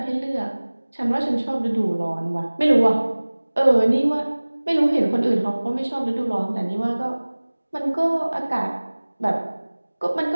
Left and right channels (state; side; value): inverted; both; correlation -1.00